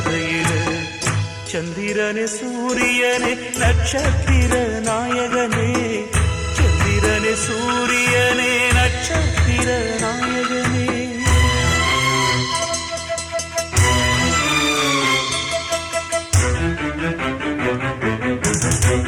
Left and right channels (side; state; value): both; identical; correlation 1.00